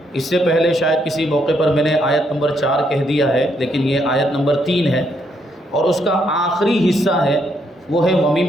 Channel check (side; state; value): both; normal; correlation 0.75